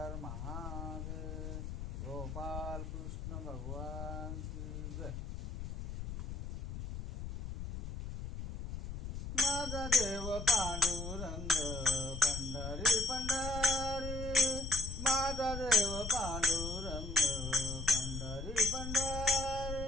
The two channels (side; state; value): left; noise; rumble, 7 dB below the sound